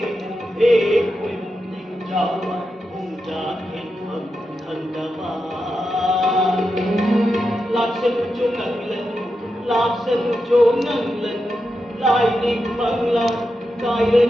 Laksan cho ngang lần lại định bằng lòng cài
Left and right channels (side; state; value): both; normal; correlation 0.88